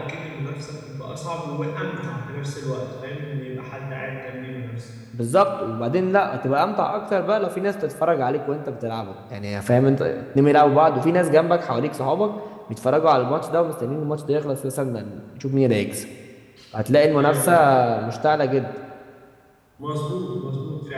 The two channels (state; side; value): identical; both; correlation 1.00